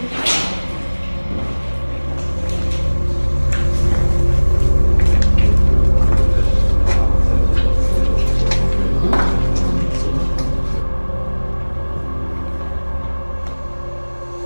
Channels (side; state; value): both; inverted; correlation -1.00